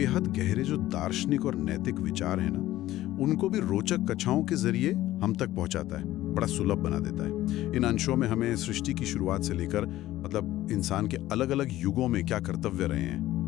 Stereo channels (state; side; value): quieter; right; 15.1 dB